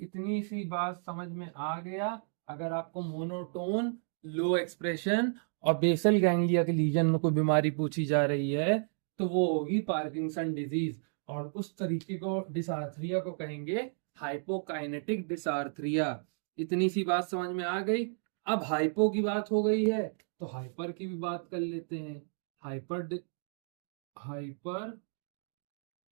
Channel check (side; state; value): left; silent; digital silence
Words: सी बात समझ में आ गया। अगर आपको मोनोटोन, लो एक्सप्रेशन और बेसल गैंग्लिया के लीजन में कोई बीमारी पूछी जा रही है तो वो होगी पार्किंसन डिजीज। और उस तरीके को डिसार्थरिया को कहेंगे हाइपोकाइनेटिक डिसार्थरिया। इतनी सी बात समझ में आ गई। अब हाइपो की बात हो गई है तो हाइपर की भी बात कर लेते हैं। Hyper